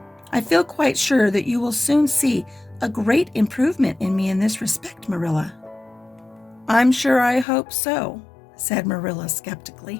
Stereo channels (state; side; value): drops out; right; at 7.5 s